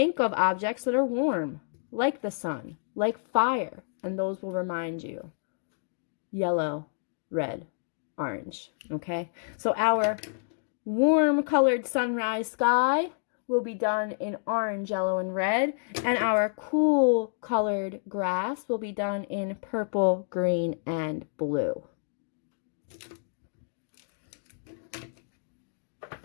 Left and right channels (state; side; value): silent; right; digital silence